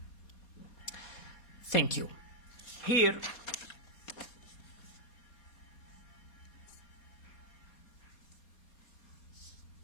Thank you. Here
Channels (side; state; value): right; late; 4.2 ms